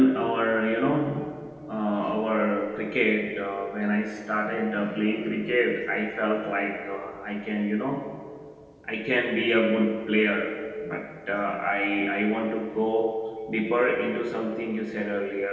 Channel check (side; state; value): both; identical; correlation 1.00